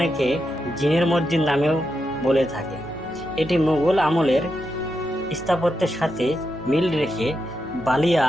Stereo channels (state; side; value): normal; both; correlation 0.86